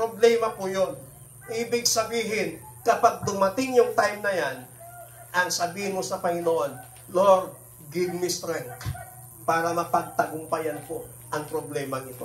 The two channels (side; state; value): both; identical; correlation 1.00